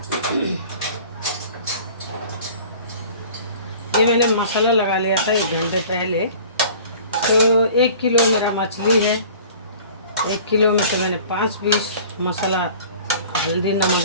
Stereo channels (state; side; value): inverted; both; correlation -0.46